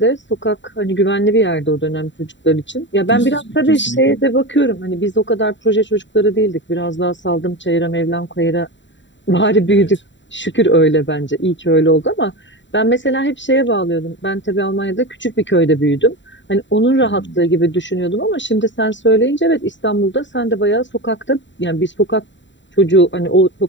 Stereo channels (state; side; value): late; right; 0.54 ms